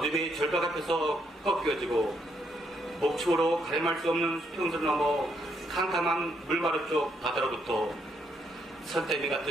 절벽 앞에서 꺾여지고 목축으로 가늠할 수 없는 수평선 넘어 캄캄한 물마루 쪽 바다로부터 선대미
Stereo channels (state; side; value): normal; both; correlation 0.75